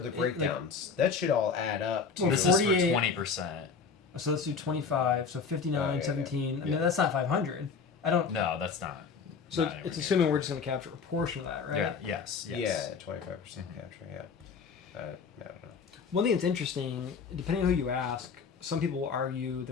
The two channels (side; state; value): right; quieter; 5.5 dB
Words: breakdowns. That should all add up to. Well, This 48 is for 20%. So let's do 25. So 59, Oh, yeah, 17. yeah. I mean, that's not 500. I don't. No, that's not. So not it's anywhere assuming we're just going to capture a portion of that, right? near. Yes. Yeah, 25% capture. Yeah. I don't know. One thing that's interesting, depending on who you ask, some people will argue